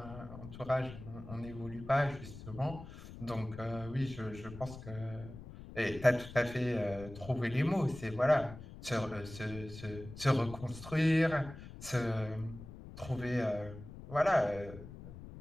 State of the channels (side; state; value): left; noise; rumble, 14 dB below the sound